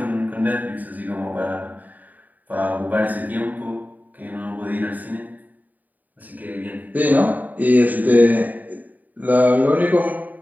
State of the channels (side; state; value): left; late; 0.082 ms